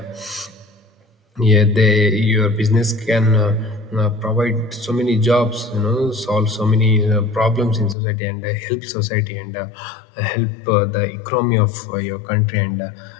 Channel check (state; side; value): drops out; right; at 8.0 s